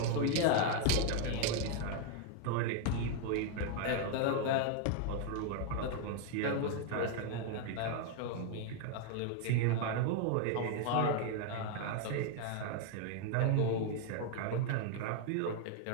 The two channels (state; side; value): different; both; correlation 0.00